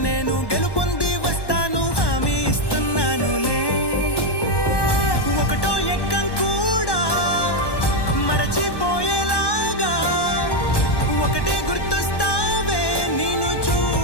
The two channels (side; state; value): right; late; 1.1 ms